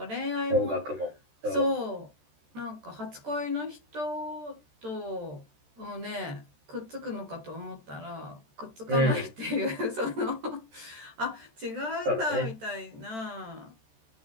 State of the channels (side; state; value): left; late; 13 ms